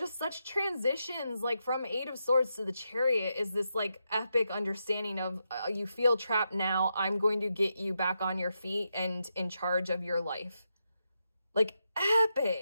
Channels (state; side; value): inverted; both; correlation -0.85